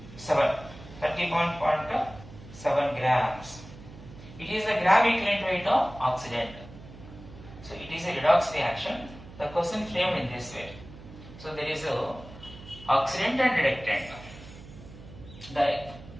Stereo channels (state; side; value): noise; right; hum, 17 dB below the sound